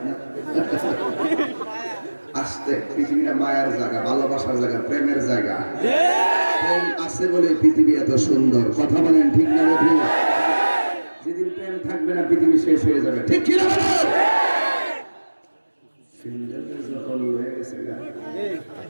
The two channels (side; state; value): both; inverted; correlation -1.00